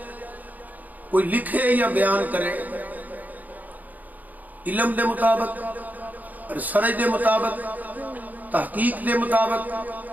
کوئی لکھے یا بیان کرے علم دے مطابق، ریسرچ دے مطابق، تحقیق دے مطابق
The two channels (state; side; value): late; left; 0.081 ms